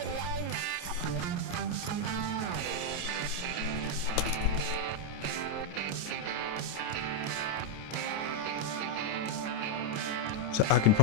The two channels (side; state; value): right; late; 28 ms